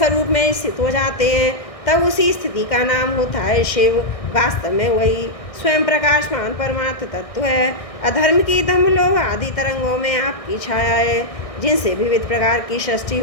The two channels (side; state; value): right; late; 1.6 ms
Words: में स्थित हो जाते हैं, तब उसी स्थिति का नाम होता है शिव। वास्तव में वही स्वयं प्रकाशमान परमार्थ तत्व है। अधर्म की दम लोभ आदि तरंगों में आपकी छाया है, जिनसे विविध प्रकार की सृष्टि